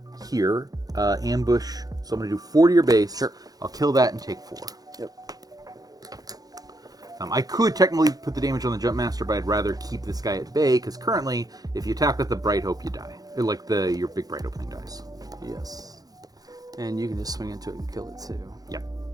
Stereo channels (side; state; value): left; late; 0.18 ms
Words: here. Ambush. So I'm going to do 4 to your base. Sure. I'll kill that and take 4. Yep. I could technically put the damage on the Jump Master, but I'd rather keep this guy at bay, because currently, if you attack with the Bright Hope, you die. Your big Bright Opening dies. Yes. And you can just swing into it and kill it too. Yep.